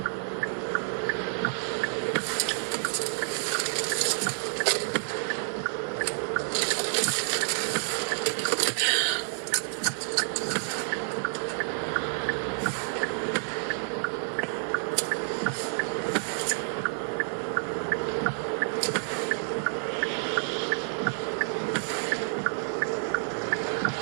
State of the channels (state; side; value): silent; left; digital silence